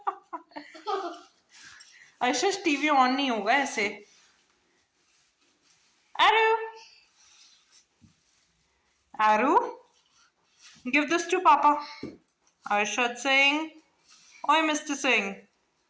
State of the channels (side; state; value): both; identical; correlation 1.00